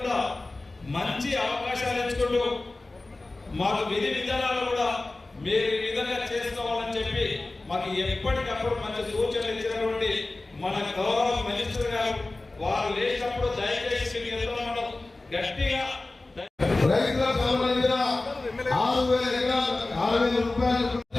కూడా మంచి అవకాశాలు ఇచ్చుకుంటూ మాకు విధి విధానాలు కూడా మీరు ఈ విధంగా చేసుకోవాలని చెప్పి మాకు ఎప్పటికప్పుడు మంచి సూచనలు ఇచ్చినటువంటి మన గౌరవ మినిస్టర్ గారు వారు లేచినప్పుడు దయచేసి మనం గట్టిగా రైతులకు సంబంధించిన 6,000 ఎకరాలు 6,000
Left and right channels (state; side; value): quieter; right; 3.1 dB